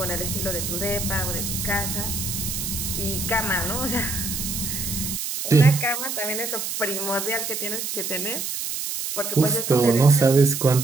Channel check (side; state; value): right; noise; hiss, 4 dB below the sound